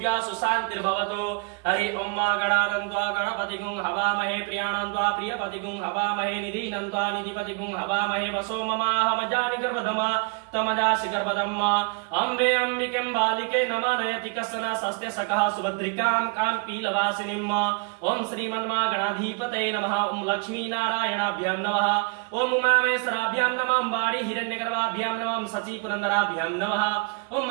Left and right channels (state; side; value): quieter; left; 31.9 dB